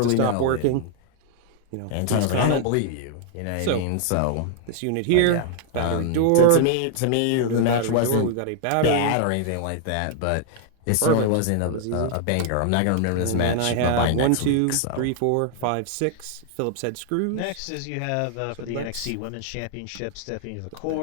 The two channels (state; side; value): different; both; correlation 0.00